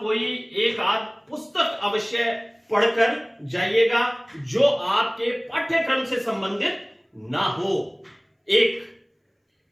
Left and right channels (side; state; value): both; identical; correlation 1.00